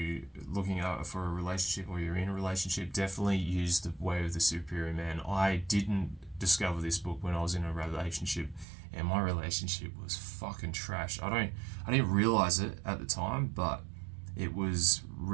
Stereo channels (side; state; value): left; drops out; at 8.7 s